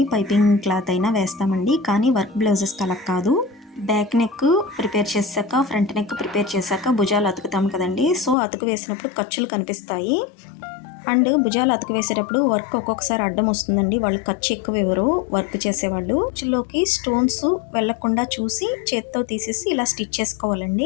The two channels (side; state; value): right; drops out; at 8.3 s